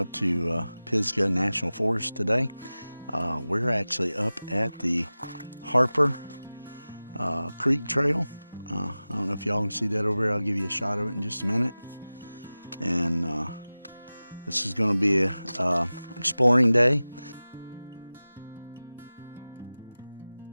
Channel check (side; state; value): both; inverted; correlation -0.97